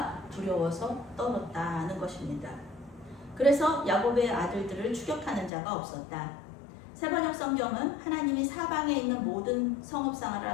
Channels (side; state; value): right; drops out; at 5.5 s